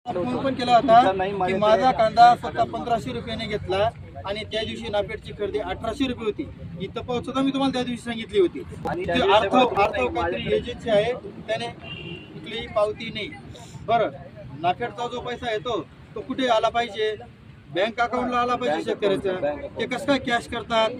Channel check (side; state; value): both; identical; correlation 1.00